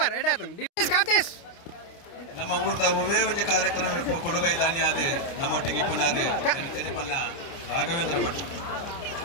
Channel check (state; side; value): late; right; 29 ms